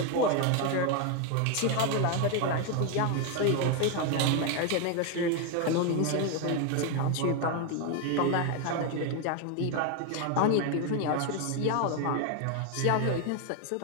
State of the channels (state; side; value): different; both; correlation 0.01